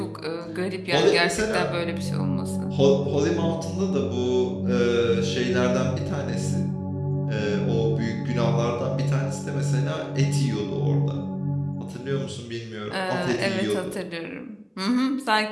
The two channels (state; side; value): identical; both; correlation 1.00